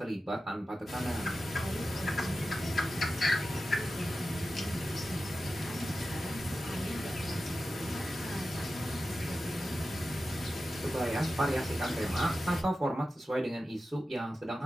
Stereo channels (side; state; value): both; normal; correlation 0.93